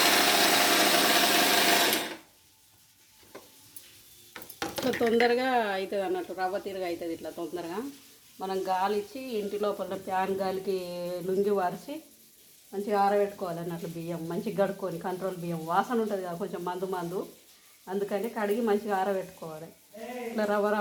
ఇట్లా తొందరగా అవుతుంది అన్నట్టు, రవ్వ తిరగ అవుతుంది ఇట్లా తొందరగా. మనం గాలి ఇచ్చి ఇంటి లోపల ఫ్యాన్ గాలికి లుంగి వారిసి మంచిగా ఆరబెట్టుకోవాలి అన్నట్లు. బియ్యం మంచిగా కడుక్కొని, కంట్రోల్ బియ్యం వాసన ఉంటుంది కదా కొంచెం మందు, అందుకని కడిగి మంచిగా ఆరబెట్టుకోవాలి. ఇట్లా రవ్వ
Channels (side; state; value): both; identical; correlation 1.00